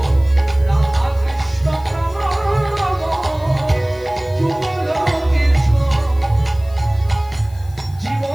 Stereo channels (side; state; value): left; noise; hiss, 26 dB below the sound